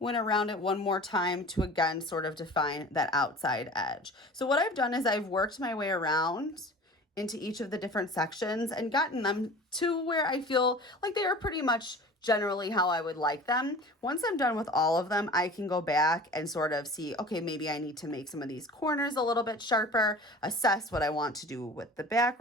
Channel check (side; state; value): both; normal; correlation 0.41